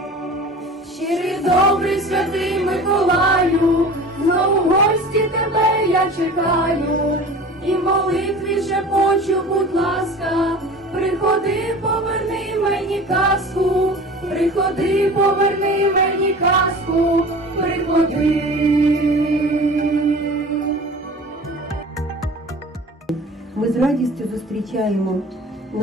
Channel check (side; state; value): both; normal; correlation 0.39